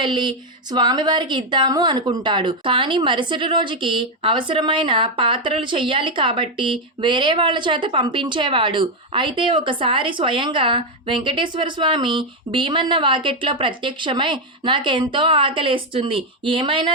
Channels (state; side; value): normal; both; correlation 0.04